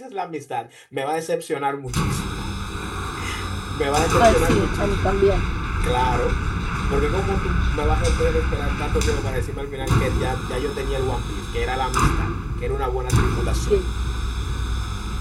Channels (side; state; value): both; identical; correlation 1.00